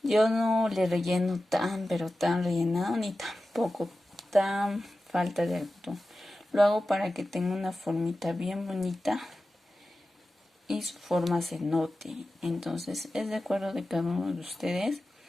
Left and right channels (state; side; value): normal; both; correlation 0.94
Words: Yo no le relleno tan, pero tan rellenado, ni tampoco tan falta de algodón. Lo hago para que tenga una formita bien bonita y su forma se note. Entonces, es de acuerdo de cada uno de ustedes.